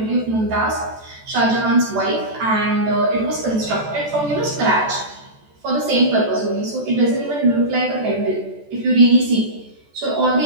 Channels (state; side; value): late; left; 14 ms